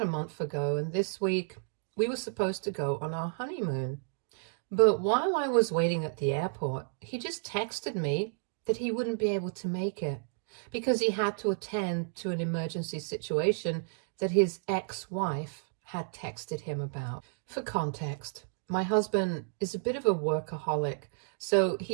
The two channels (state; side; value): silent; left; digital silence